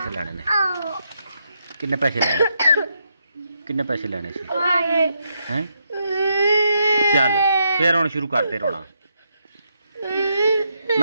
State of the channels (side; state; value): both; inverted; correlation -0.79